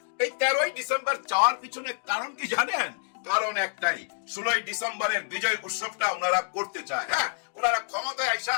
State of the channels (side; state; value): right; silent; 60 dB below the other